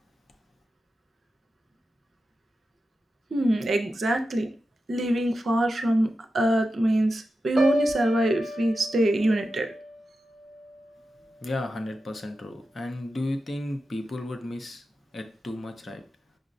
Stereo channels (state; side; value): normal; both; correlation 0.91